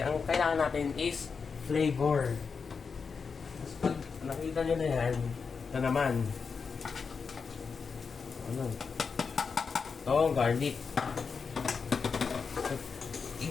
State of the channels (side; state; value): right; quieter; 5.4 dB